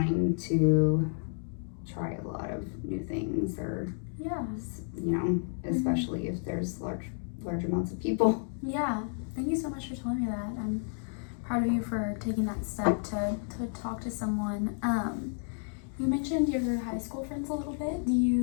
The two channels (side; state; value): right; silent; 57 dB below the other